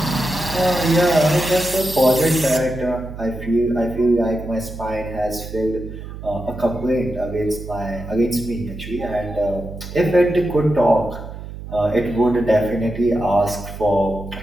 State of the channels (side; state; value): right; noise; hum, 11 dB below the sound